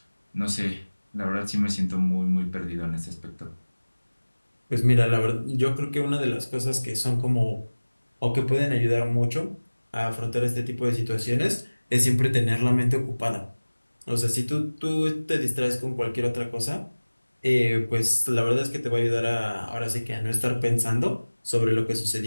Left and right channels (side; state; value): both; inverted; correlation -1.00